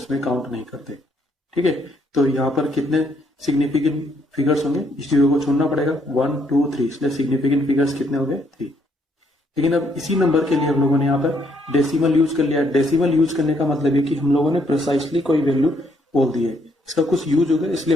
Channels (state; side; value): normal; both; correlation 0.71